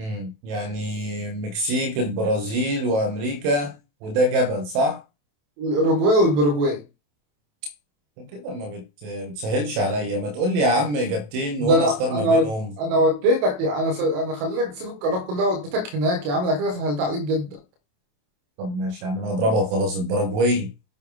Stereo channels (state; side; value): late; left; 27 ms